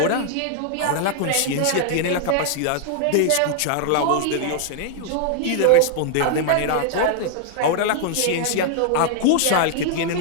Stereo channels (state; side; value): different; both; correlation 0.00